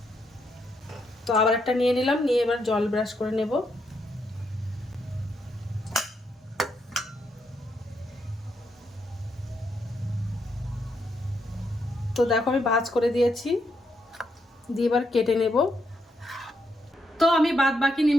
তো আবার একটা নিয়ে নিলাম। নিয়ে এবার জল ব্রাশ করে নেব। তো দেখো আমি ভাঁজ করে দিয়েছি। দিয়ে এবার কেটে নেব। তো আমি বাদ বাকি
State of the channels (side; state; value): both; normal; correlation 0.79